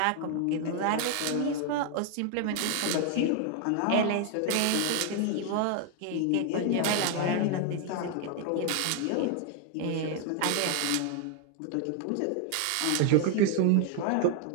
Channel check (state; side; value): different; both; correlation 0.00